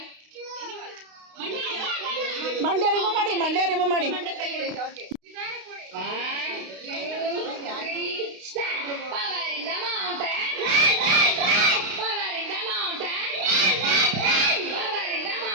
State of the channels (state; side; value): late; left; 32 ms